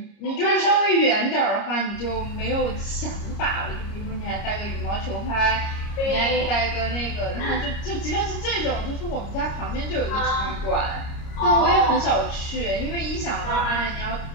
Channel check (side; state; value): right; late; 29 ms